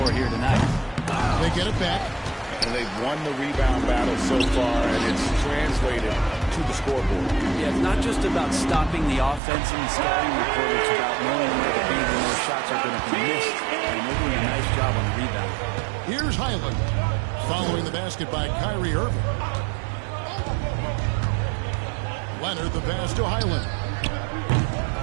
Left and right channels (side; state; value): left; drops out; at 9.4 s